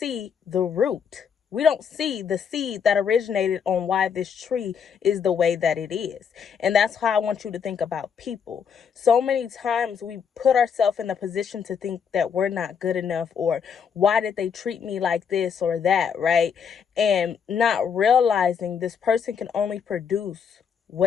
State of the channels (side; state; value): right; quieter; 7.0 dB